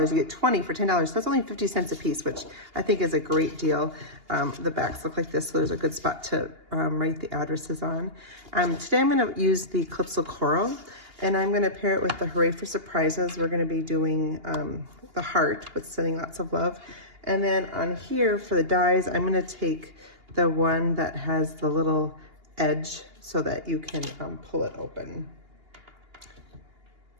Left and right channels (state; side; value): late; left; 2.8 ms